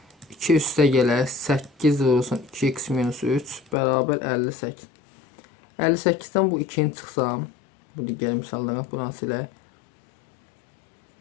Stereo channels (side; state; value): right; drops out; at 3.8 s